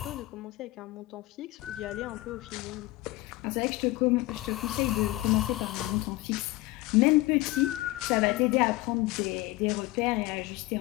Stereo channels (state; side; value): quieter; right; 19.2 dB